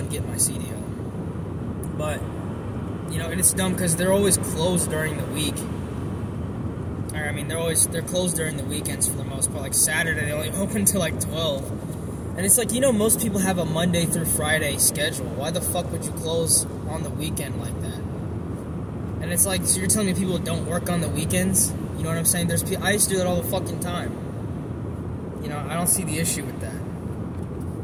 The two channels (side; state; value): both; identical; correlation 1.00